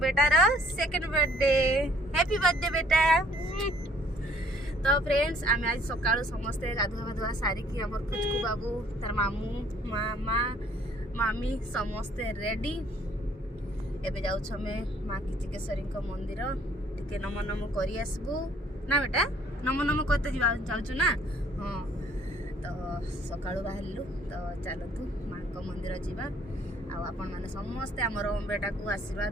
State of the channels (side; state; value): both; normal; correlation 0.60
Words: बेटार सेकंड बर्थडे। हैप्पी बर्थडे बेटा। तो फ्रेंड्स आम आज सकाळु समस्ते गाधुआ गाधुआ सारिकी हमर खुचकु बाबू तार मामू मामा मामी समस्ते रेडी। एबे जाउ छमे माँ किचकेश्वरी को मंदिर टिके नम नम करी आसबू ना बेटा। नम नम करते जाउछु ना। हाँ तो सकाळु बाहरलु तो चलतु माँ को मंदिर जीवा। आपण माने समस्ते हमर ओम बेटा को